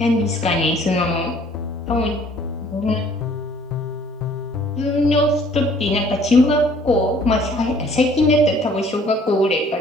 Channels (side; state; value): both; normal; correlation 0.57